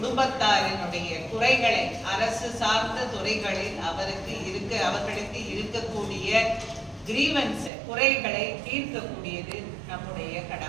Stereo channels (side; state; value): left; drops out; at 7.7 s